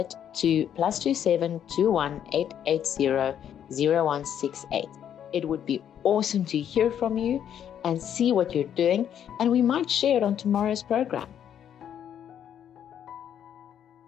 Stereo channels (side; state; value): right; quieter; 9.5 dB